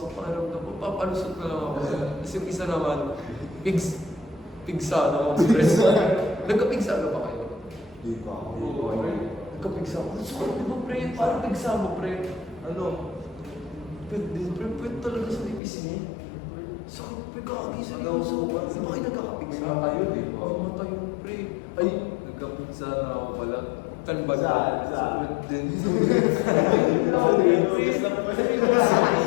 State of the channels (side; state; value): right; drops out; at 15.6 s